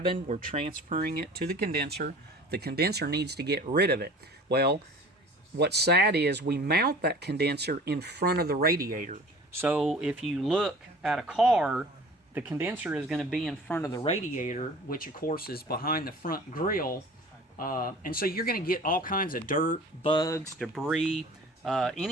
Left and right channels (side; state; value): both; normal; correlation 0.44